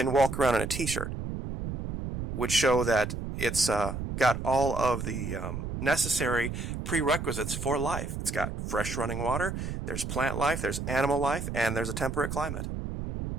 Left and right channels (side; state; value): right; noise; rumble, 5 dB below the sound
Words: walk around in a t-shirt, would show that it's got all of the necessary prerequisites for life. It's got fresh running water, there's plant life, there's animal life, and there's a temperate climate.